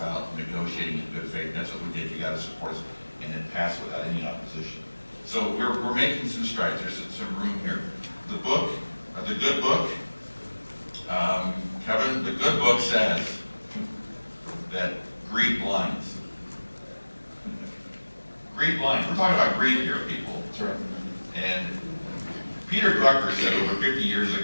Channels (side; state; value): both; inverted; correlation -1.00